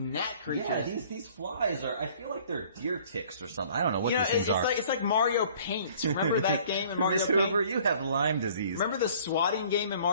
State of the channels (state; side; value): inverted; both; correlation -0.54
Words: creatures. Yeah, these flies are. I feel like they're deer ticks or something. I don't know what these things are. It's like Mario Paint. Remember that game in Mario Miss Paint? Hoover, you have Lyme disease. Remember the swatting game in